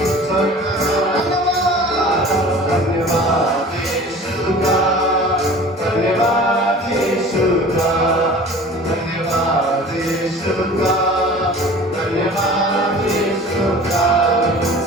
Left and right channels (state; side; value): normal; both; correlation 0.42